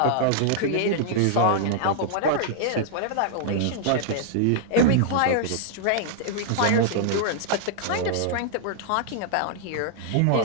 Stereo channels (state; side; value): different; both; correlation -0.01